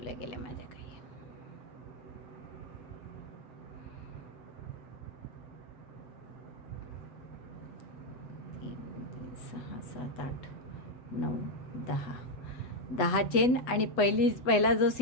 गेल्या माझ्या काही. 6 7 8 9 10 चेन आणि पहिला जो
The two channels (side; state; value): right; late; 8.0 ms